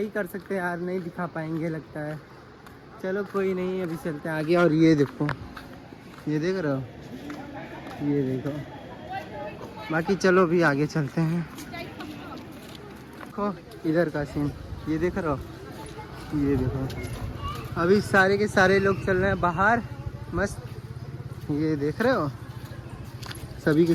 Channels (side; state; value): both; identical; correlation 1.00